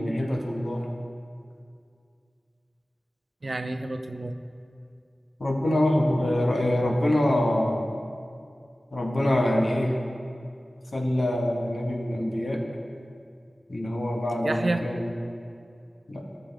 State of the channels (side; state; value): both; normal; correlation 0.96